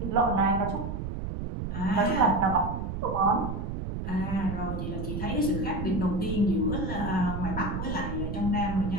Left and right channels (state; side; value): noise; right; rumble, 4 dB below the sound